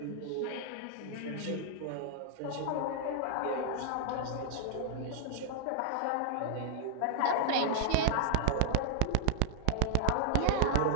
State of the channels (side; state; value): both; different; correlation -0.01